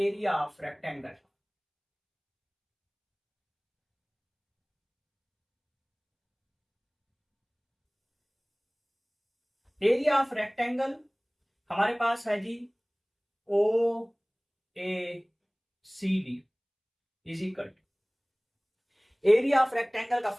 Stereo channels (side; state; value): both; identical; correlation 1.00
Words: of rectangle. Area of rectangle हमारे पास है जी O A C D is equal to, area of rectangle का